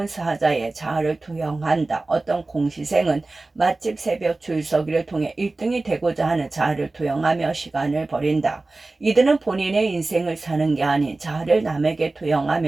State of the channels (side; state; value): left; quieter; 3.2 dB